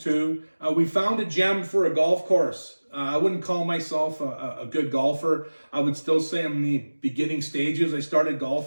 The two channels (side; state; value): both; inverted; correlation -1.00